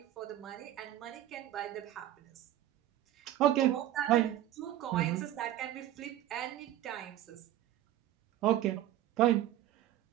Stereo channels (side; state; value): left; quieter; 13.0 dB